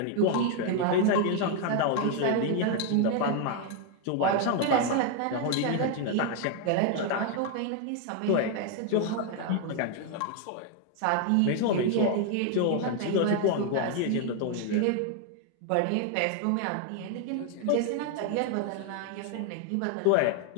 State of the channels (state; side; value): different; both; correlation 0.01